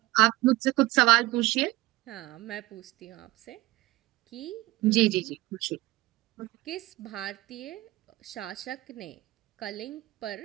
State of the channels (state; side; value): quieter; left; 19.1 dB